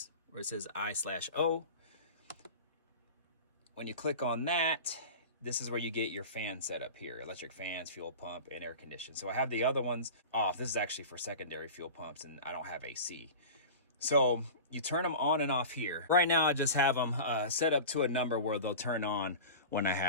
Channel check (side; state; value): both; inverted; correlation -0.33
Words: where it says I/O, when you click on that, this is where you get your fan setup here: electric fans, fuel pump, and air condition. So I have the other ones off. This is actually for secondary fuel pumps, and I don't have AC. So you turn them on and off here. Right now, I just have them set up to a number where they'll turn on when I